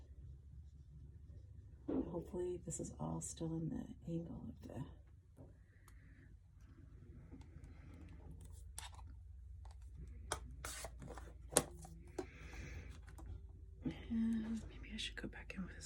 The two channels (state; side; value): identical; both; correlation 1.00